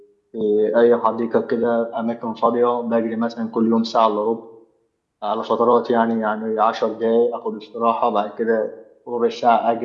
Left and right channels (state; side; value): identical; both; correlation 1.00